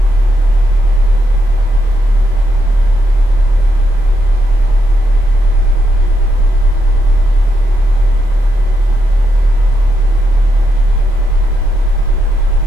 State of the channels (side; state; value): left; late; 27 ms